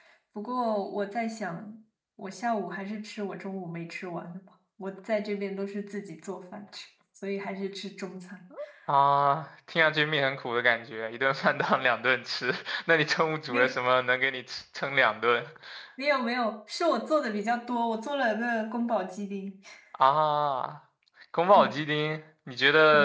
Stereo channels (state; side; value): identical; both; correlation 1.00